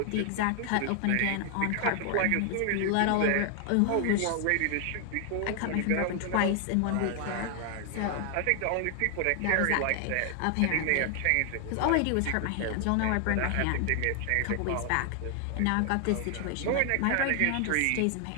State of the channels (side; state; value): both; different; correlation 0.00